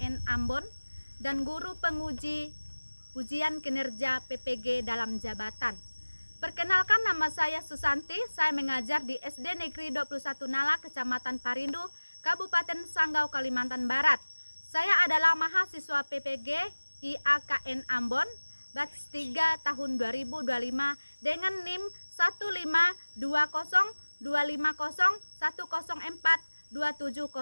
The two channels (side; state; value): both; inverted; correlation -1.00